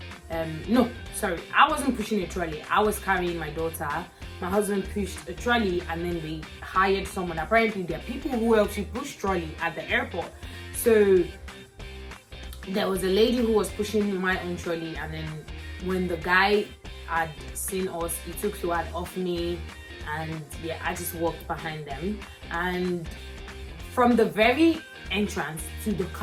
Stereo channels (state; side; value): identical; both; correlation 1.00